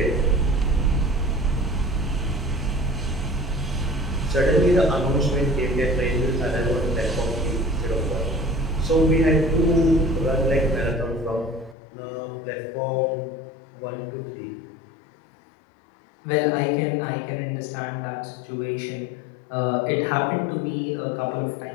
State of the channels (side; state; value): right; drops out; at 11.8 s